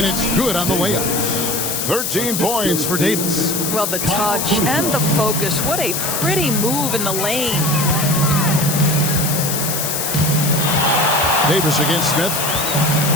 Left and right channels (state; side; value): noise; left; hiss, 1 dB below the sound